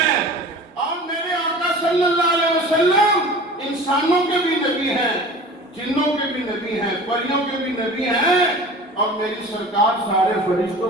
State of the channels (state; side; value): normal; both; correlation 0.40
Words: اور میرے آقا صلی اللہ علیہ وسلم انسانوں کے بھی نبی ہیں، جنوں کے بھی نبی ہیں، پریوں کے بھی نبی ہیں، اور میری سرکار سارے فرشتوں